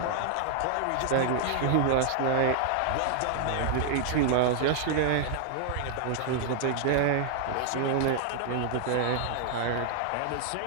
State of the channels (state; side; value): different; both; correlation 0.00